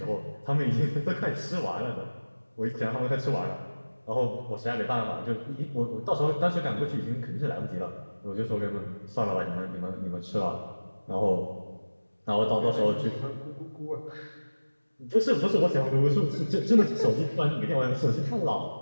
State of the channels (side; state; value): both; inverted; correlation -1.00